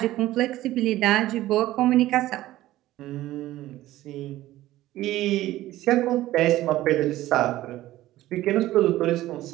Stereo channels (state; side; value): quieter; left; 15.5 dB